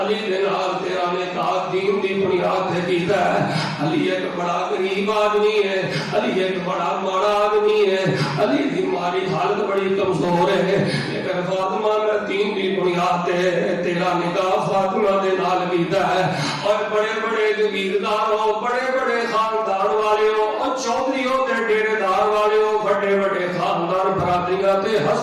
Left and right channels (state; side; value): identical; both; correlation 1.00